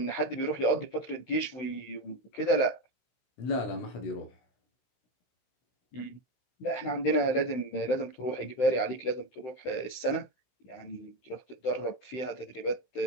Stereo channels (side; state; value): right; late; 16 ms